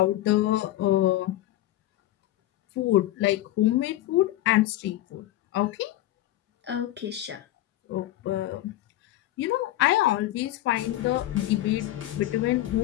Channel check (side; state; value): right; quieter; 14.8 dB